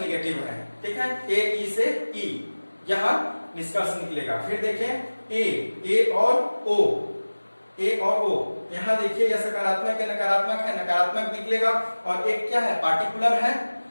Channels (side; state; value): both; inverted; correlation -1.00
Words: निगेटिव है, ठीक है, ए ई से ई, यह निष्कर्ष निकलेगा। फिर देखें ए और ओ, ए और ओ, यहाँ देखिए यह सकारात्मक है, नकारात्मक है, नकारात्मक निकलेगा, और एक क्या है, पार्टिकुलर है,